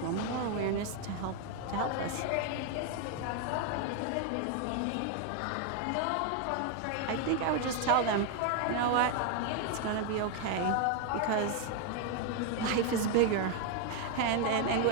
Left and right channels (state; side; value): different; both; correlation 0.01